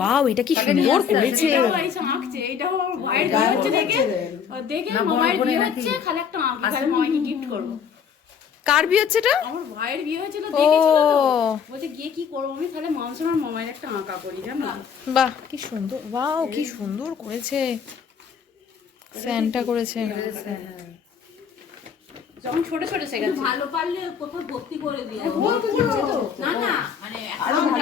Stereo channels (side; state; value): right; quieter; 7.2 dB